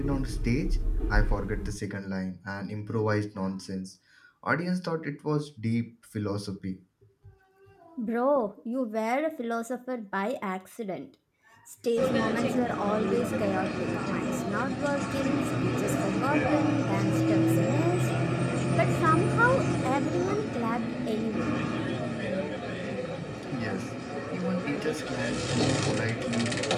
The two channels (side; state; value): both; identical; correlation 1.00